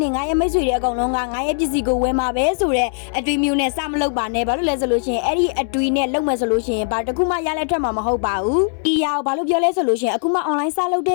တွေငါရဲ့မိတ်ဆွေတွေအကုန်လုံးကငါရဲ့ပစ္စည်းကိုဝယ်မှာပဲဆိုတဲ့အတွေးမျိုးနဲ့စမလုပ်ပါနဲ့ဘာလို့လဲဆိုလို့ရှိရင်အဲ့ဒီအတွေးနဲ့လုပ်မယ်ဆိုလို့ရှိရင်ဘာတခုမှရလက်ထွက်မှာမဟုတ်ပါဘူးဒီရအောင်ဘာလို့ပြောလဲဆိုလို့ရှိရင်အခုမှ online စလုပ်တ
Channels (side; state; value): right; silent; digital silence